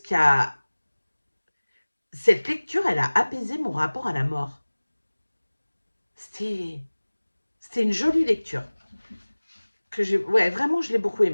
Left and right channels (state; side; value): inverted; both; correlation -1.00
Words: qui a cette lecture, elle a apaisé mon rapport à la mort. C'était une jolie lecture. Ouais, vraiment, je l'ai beaucoup